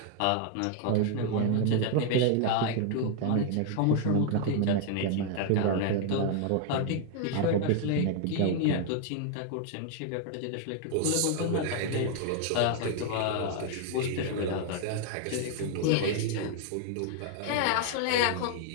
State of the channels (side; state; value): both; different; correlation 0.00